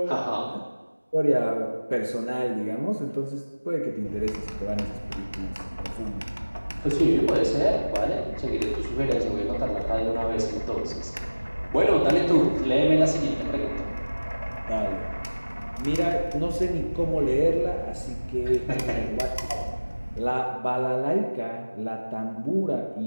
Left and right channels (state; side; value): inverted; both; correlation -1.00